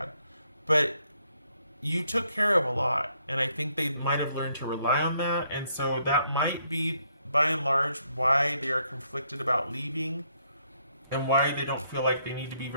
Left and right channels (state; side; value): inverted; both; correlation -0.72